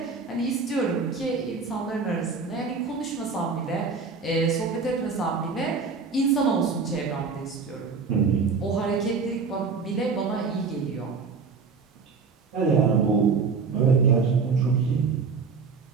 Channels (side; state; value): left; quieter; 5.0 dB